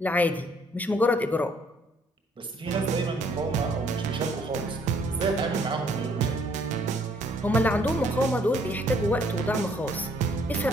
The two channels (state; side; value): normal; both; correlation 0.64